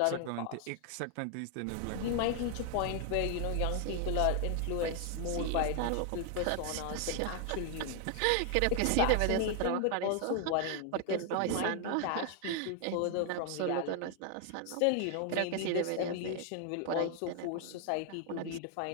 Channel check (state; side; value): different; both; correlation 0.00